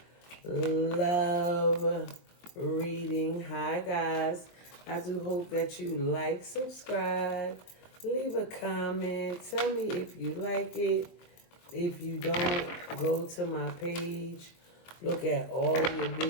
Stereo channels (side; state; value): right; late; 23 ms